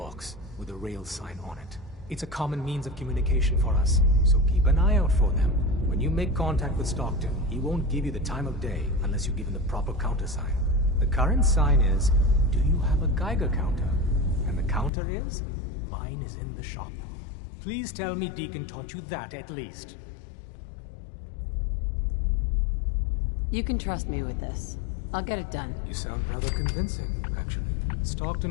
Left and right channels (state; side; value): drops out; right; at 14.9 s